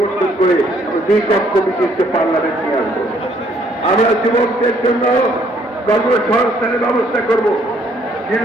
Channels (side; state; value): both; normal; correlation 0.65